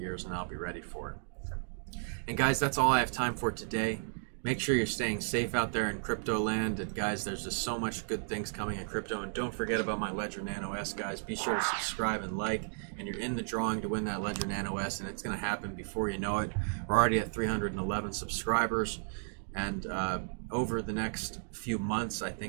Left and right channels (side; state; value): left; silent; digital silence